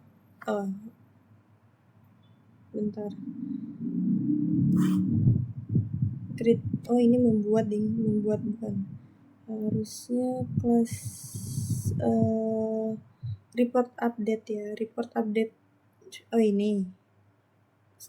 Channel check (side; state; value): both; identical; correlation 1.00